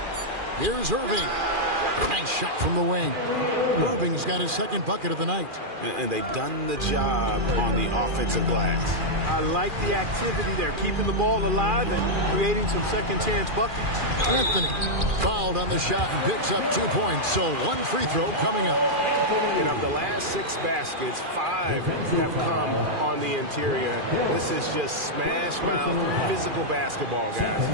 Here's Irving. Nice shot from the wing. Irving's got his second bucket of the night. And they've done the job on the offensive glass. I like the activity there, keeping the ball alive and creating some second chance buckets. Anthony fouled on the shot and picks up 2 points. So one free throw coming up. And of the last 6 baskets, 5 have come on the interior. This is just smash mouth physical basketball, guys.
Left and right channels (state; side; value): late; left; 2.4 ms